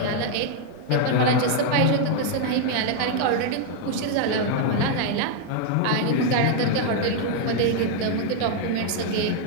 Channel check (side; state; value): both; different; correlation 0.00